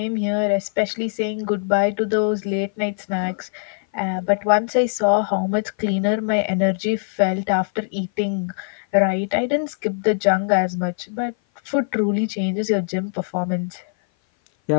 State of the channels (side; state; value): right; silent; 57 dB below the other